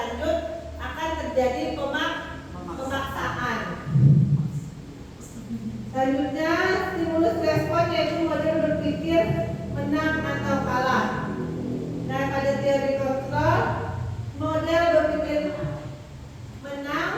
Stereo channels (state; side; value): identical; both; correlation 1.00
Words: akan terjadi pemaksaan. Selanjutnya stimulus respon yaitu model berpikir menang atau kalah. Nah, pada teori kontrol, model berpikir menang